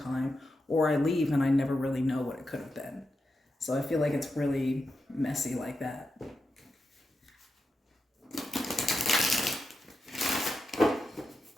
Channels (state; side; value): normal; both; correlation 0.88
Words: or I leave and I never really know what it could have been. So I feel like it's really messy like that.